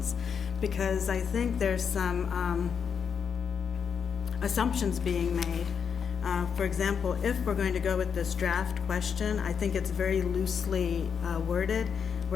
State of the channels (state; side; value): quieter; right; 6.9 dB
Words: because I think there's some assumptions being made. For example, if we're going to go with this draft question, I think it's very loosely worded,